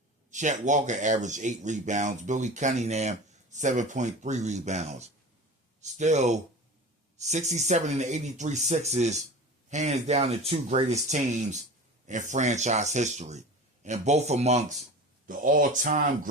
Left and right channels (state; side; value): normal; both; correlation 0.34